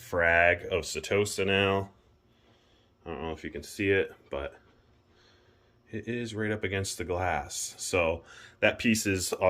of Setosa now. I don't know if you can see it, but it is right up against the glass. So that piece is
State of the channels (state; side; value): identical; both; correlation 1.00